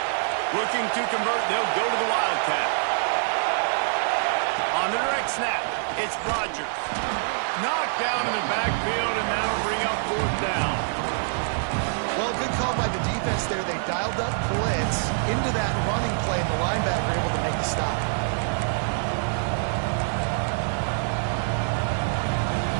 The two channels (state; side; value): silent; left; digital silence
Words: Looking to convert, they'll go to the Wildcat. On the direct snap, it's Rodgers. Knocked down in the backfield, and that'll bring up 4th down. Well, good call by the defense there. They dialed up blitz into that running play, and the linebacker able to make the stop.